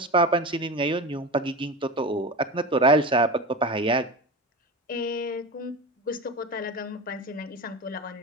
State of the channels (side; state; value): both; normal; correlation 0.26